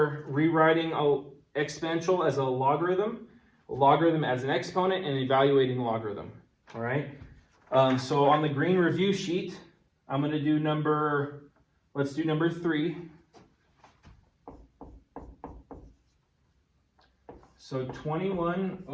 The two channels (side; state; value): both; identical; correlation 1.00